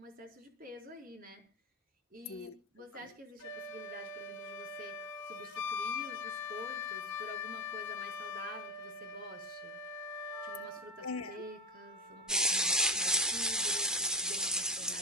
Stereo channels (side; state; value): both; normal; correlation 0.15